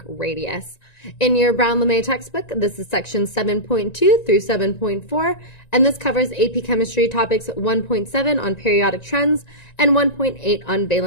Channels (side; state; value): right; late; 1.9 ms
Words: radius. In your Brown-LeMay textbook, this is section 7.2 through 7.4, and this covers AP Chemistry topics 1.7 on periodic trends and 1.8 on